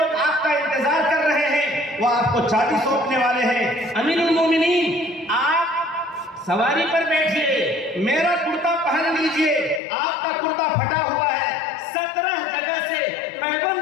آپ کا انتظار کر رہے ہیں، وہ آپ کو چابی سونپنے والے ہیں۔ امیر المومنین آپ سواری پر بیٹھیے، میرا کرتا پہن لیجئے، آپ کا کرتا پھٹا ہوا ہے، 17 جگہ سے پیبند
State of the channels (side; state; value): right; drops out; at 9.8 s